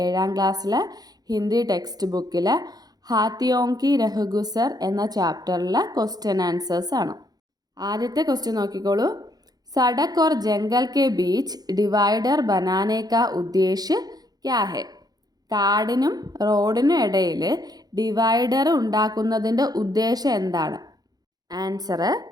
ക്ലാസ്സിലെ ഹിന്ദി ടെക്സ്റ്റ് ബുക്കിലെ ഹാത്തിയോം കി രഹ്ഗുസർ എന്ന ചാപ്റ്ററിലെ ക്വസ്റ്റ്യൻ ആൻസേഴ്സ് ആണ്. ആദ്യത്തെ ക്വസ്റ്റ്യൻ നോക്കിക്കോളൂ. സഡക് ഓർ ജംഗൽ കെ ബീച്ച് ഡിവൈഡർ ബനാനെ കാ ഉദ്ദേശ് ക്യാ ഹെ? കാടിനും റോഡിനും ഇടയിൽ ഡിവൈഡർ ഉണ്ടാക്കുന്നതിൻ്റെ ഉദ്ദേശം എന്താണ്? ആൻസർ:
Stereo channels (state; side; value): late; left; 0.19 ms